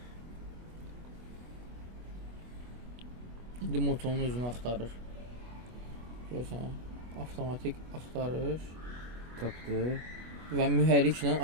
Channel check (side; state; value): left; late; 24 ms